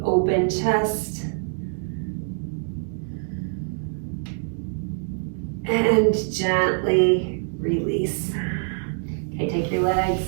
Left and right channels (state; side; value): silent; left; digital silence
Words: open chest. And gently release. Okay, take your legs,